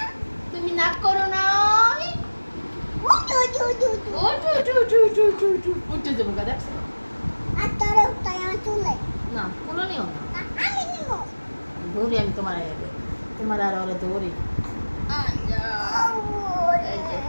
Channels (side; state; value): both; inverted; correlation -1.00